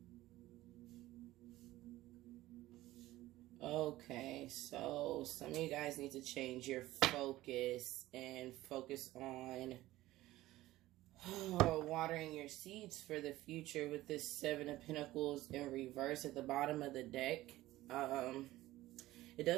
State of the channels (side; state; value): left; quieter; 16.5 dB